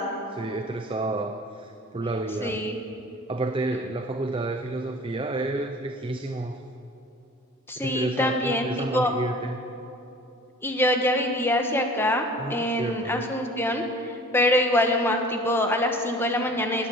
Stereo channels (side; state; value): both; normal; correlation 0.45